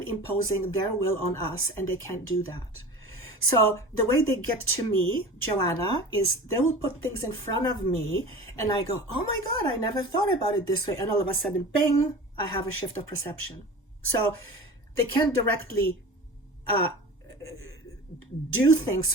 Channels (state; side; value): normal; both; correlation 0.36